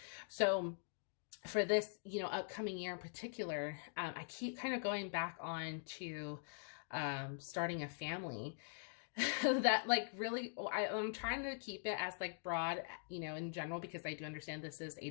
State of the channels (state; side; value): silent; right; digital silence